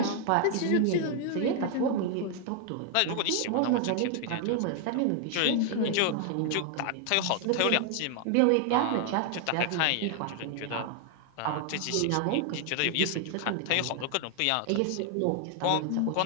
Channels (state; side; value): different; both; correlation 0.00